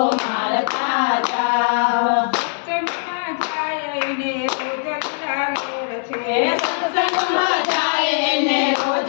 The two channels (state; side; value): silent; right; 65 dB below the other